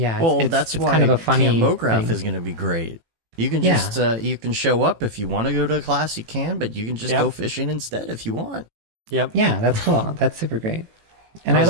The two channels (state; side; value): late; left; 18 ms